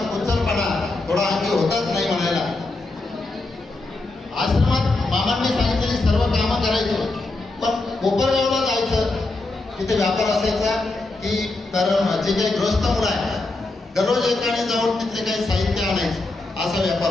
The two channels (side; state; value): right; quieter; 3.2 dB